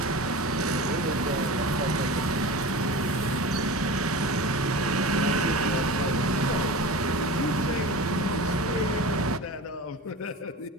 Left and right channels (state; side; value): normal; both; correlation 0.32